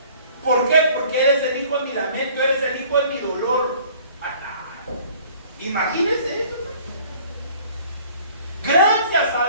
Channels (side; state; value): both; inverted; correlation -0.53